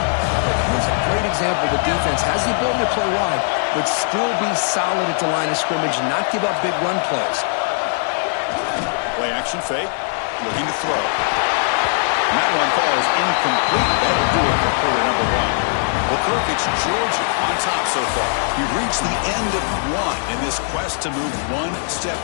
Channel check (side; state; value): right; silent; digital silence